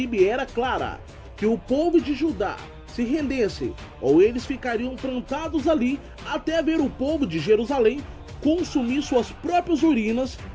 era clara: que o povo de Judá se rendesse, ou eles ficariam plantados ali até ver o povo de Jerusalém consumir suas próprias urinas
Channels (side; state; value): both; identical; correlation 1.00